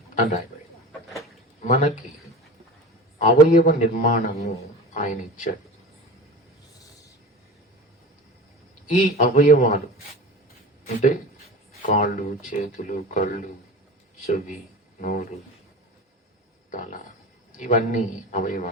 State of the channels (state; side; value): normal; both; correlation 0.32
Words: అని రాయబడి, మనకి అవయవ నిర్మాణము ఆయన ఇచ్చాడు. ఈ అవయవాలు అంటే కాళ్ళు, చేతులు, కళ్ళు, చెవి, నోరు, తల, ఇవన్నీ